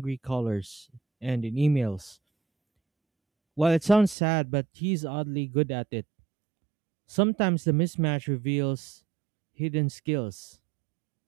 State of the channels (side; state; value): left; drops out; at 4.2 s